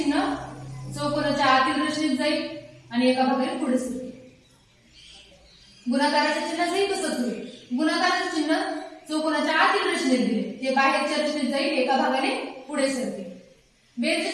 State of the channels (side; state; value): both; identical; correlation 1.00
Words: चौकोनाच्या आतील रचनेत जाईल आणि एका भागाने पुढे सरकेल. गुणाकाराच्या चिन्हाचंही तसंच होईल. गुणाकाराचं चिन्ह चौकोनाच्या आतील रचनेत दिले, ते बाहेरच्या रचनेत जाईल, एका भागाने पुढे सरकेल.